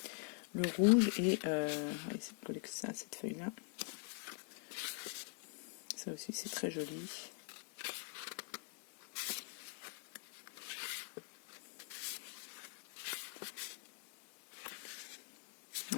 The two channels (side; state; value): right; quieter; 34.3 dB